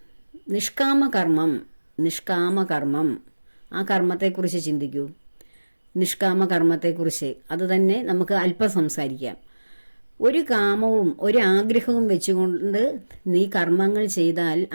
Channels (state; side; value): inverted; both; correlation -1.00